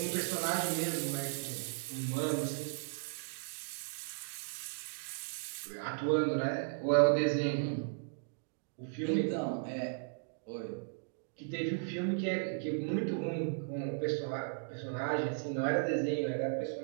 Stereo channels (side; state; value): left; silent; digital silence